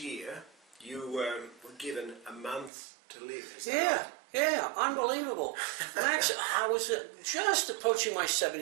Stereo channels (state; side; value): drops out; left; at 2.7 s